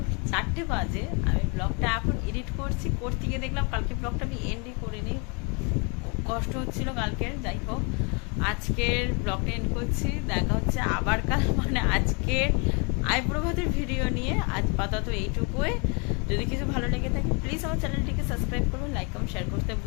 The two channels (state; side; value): quieter; right; 33.4 dB